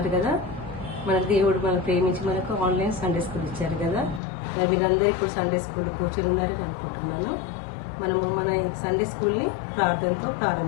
కదా. మన దేవుడు మనం ప్రేమించి మనకు ఆన్లైన్ సండే స్కూల్ ఇచ్చారు కదా. మరి మీరందరూ ఇప్పుడు సండే స్కూల్లో కూర్చొని ఉన్నారని అనుకుంటున్నాను. మనము మన సండే స్కూల్ని ప్రార్థనతో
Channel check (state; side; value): drops out; right; at 4.2 s